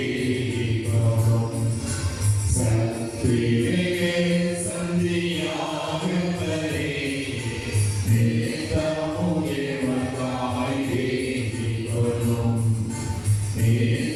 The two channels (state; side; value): identical; both; correlation 1.00